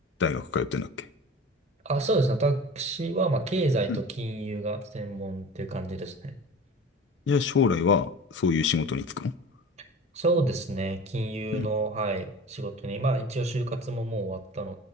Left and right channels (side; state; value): both; normal; correlation 0.38